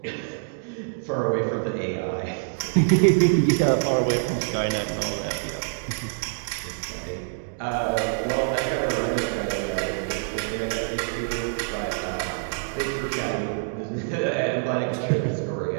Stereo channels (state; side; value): silent; left; digital silence